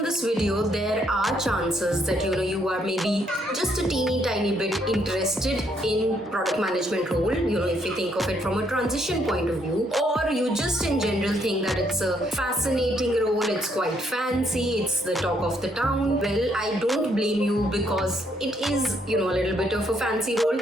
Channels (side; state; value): both; normal; correlation 0.72